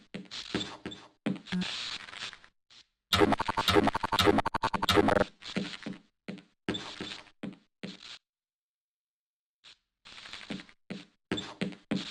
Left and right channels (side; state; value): both; identical; correlation 1.00